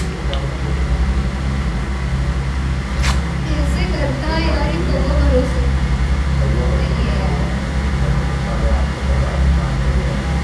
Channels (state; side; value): identical; both; correlation 1.00